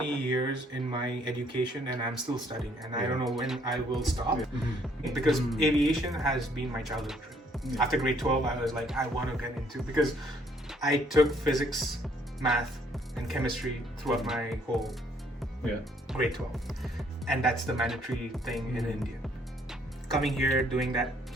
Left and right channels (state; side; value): normal; both; correlation 0.65